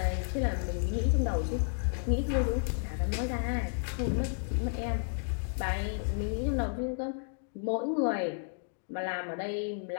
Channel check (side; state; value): right; silent; digital silence